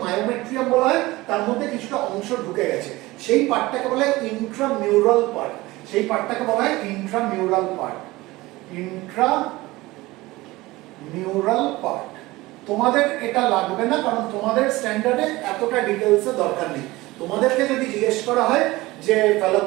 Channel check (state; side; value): quieter; left; 19.8 dB